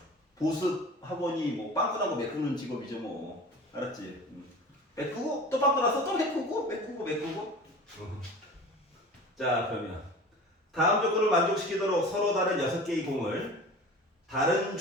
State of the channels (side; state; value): both; normal; correlation 0.37